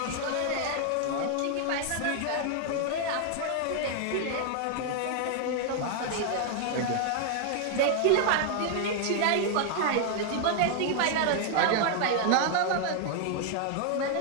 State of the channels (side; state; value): both; different; correlation 0.00